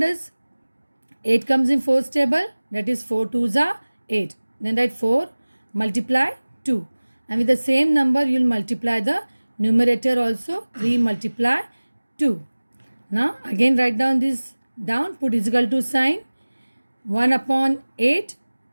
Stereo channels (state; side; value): inverted; both; correlation -1.00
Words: 8 comes in 4's table? That is 4 2s are 8. Then write 4 multiply 2. And with the same number, you will multiply the numerator also. 3 multiply 2. Now, again write down this down. Put is equal to sign. 1 upon 8